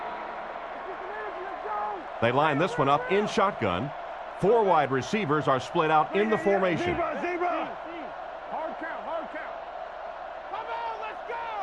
They line this one up in shotgun. 4 wide receivers are split out in the formation. Hard count, hard count. Come on, let's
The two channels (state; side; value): identical; both; correlation 1.00